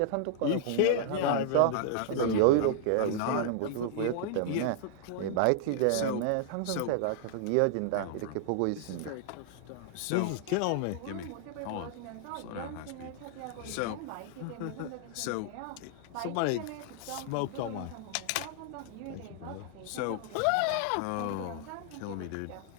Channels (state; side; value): different; both; correlation -0.01